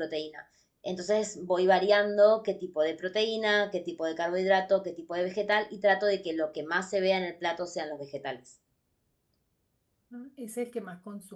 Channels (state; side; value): identical; both; correlation 1.00